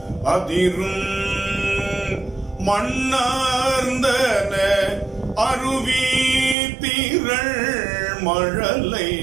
அதிரும், மண்ணார்ந்தன அருவி திரள் மழலை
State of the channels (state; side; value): drops out; left; at 6.6 s